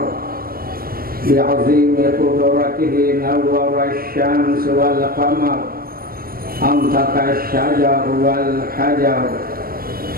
بعظيم قدرته نور الشمس والقمر أنطق الشجر والحجر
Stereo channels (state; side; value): late; left; 0.43 ms